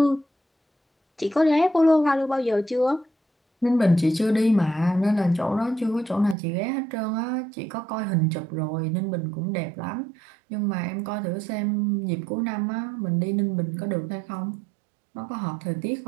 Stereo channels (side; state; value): left; drops out; at 6.4 s